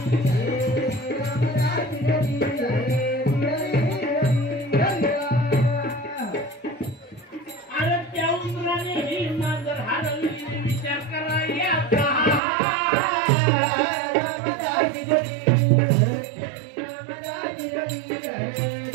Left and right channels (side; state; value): left; drops out; at 12.4 s